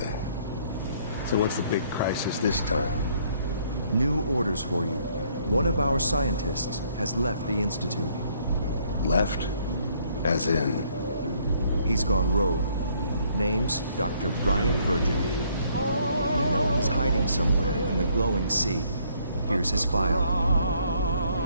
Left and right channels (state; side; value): inverted; both; correlation -0.66